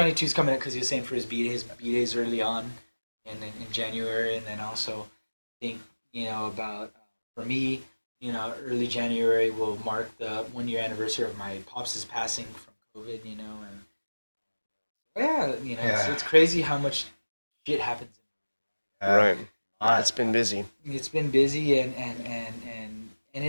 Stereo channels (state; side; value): inverted; both; correlation -1.00